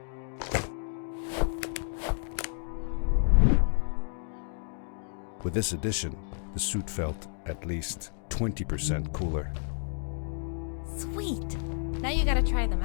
With this addition, the suit felt at least 20% cooler. Sweet! Now you gotta try them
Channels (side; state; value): right; silent; digital silence